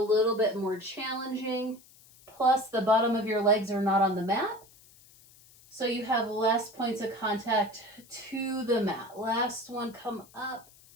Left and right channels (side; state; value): left; noise; hiss, 25 dB below the sound